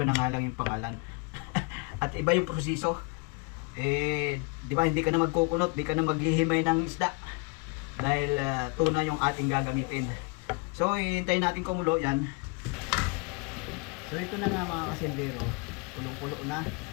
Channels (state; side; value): quieter; right; 29.2 dB